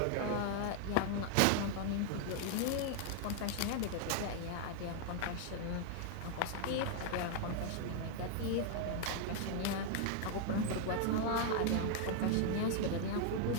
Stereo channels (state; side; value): different; both; correlation 0.00